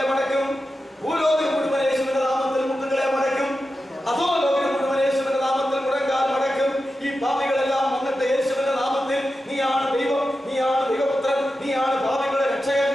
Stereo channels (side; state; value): both; normal; correlation 0.91